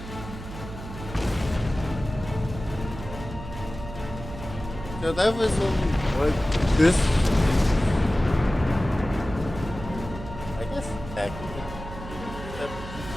So that was only what this. I guess attack.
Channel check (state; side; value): noise; right; hum, 11 dB below the sound